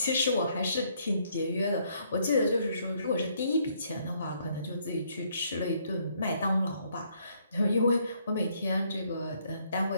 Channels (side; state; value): both; inverted; correlation -0.69